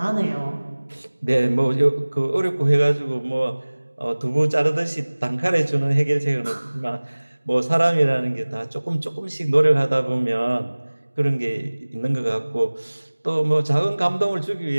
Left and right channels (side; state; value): both; inverted; correlation -1.00